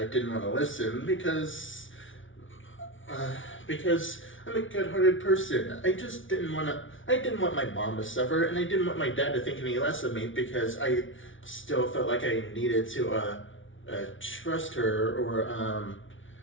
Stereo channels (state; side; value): late; right; 0.56 ms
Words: didn't want to listen because I'm a good-hearted person. I didn't want my mom to suffer, and I didn't want my dad to think any less of me because I still felt like I needed to trust her or